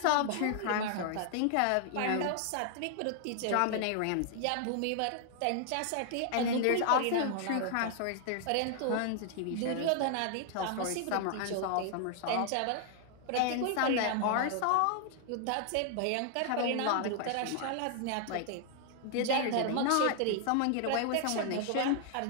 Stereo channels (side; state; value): both; different; correlation 0.00